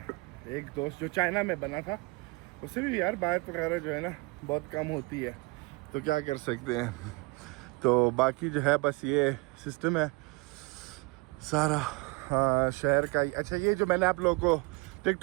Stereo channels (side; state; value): left; quieter; 26.7 dB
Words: एक दोस्त जो चाइना में बना था, उससे भी यार बात वगैरह जो है ना बहुत कम होती है, तो क्या कर सकते हैं। तो बाकी जो है बस ये सिस्टम है सारा शहर का। अच्छा ये जो मैंने आप लोगों को